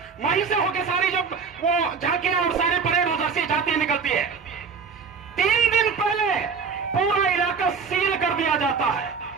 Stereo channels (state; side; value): quieter; left; 5.6 dB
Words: वहीं से होकर सारी जब वो झांकियां और सारे परेड उधर से जाती निकलती है। 3 दिन पहले पूरा इलाका सील कर दिया जाता है।